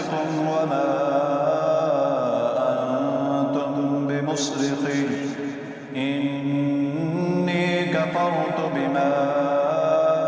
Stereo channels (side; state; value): both; identical; correlation 1.00